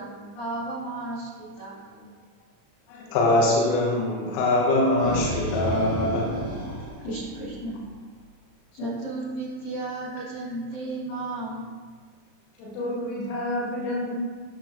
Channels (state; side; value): late; right; 35 ms